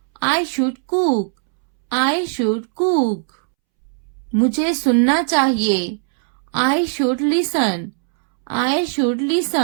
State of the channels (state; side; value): silent; left; 67 dB below the other